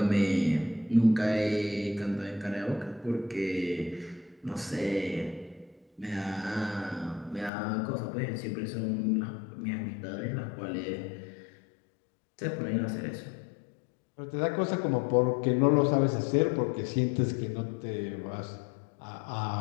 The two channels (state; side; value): drops out; right; at 7.5 s